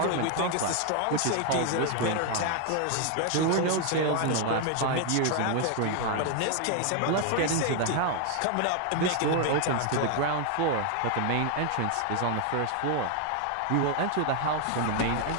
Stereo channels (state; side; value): different; both; correlation 0.00